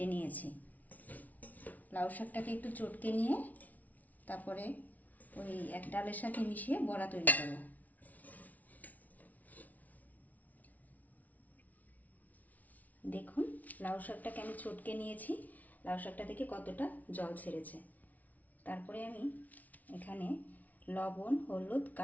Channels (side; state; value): right; late; 0.074 ms